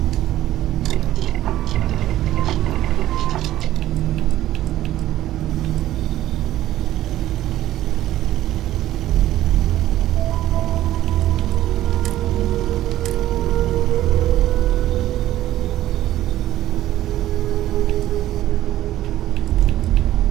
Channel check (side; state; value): left; quieter; 13.9 dB